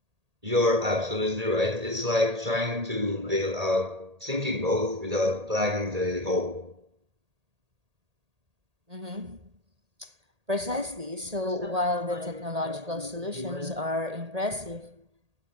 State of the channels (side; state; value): left; late; 1.8 ms